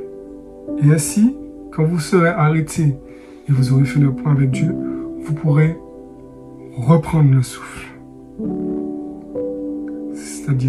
Et ainsi, quand vous serez arrêté et vous aurez fait le point avec Dieu, vous pourrez reprendre le souffle.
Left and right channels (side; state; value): both; identical; correlation 1.00